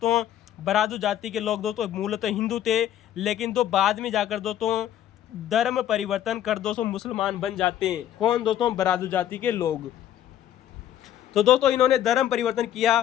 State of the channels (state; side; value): quieter; right; 11.2 dB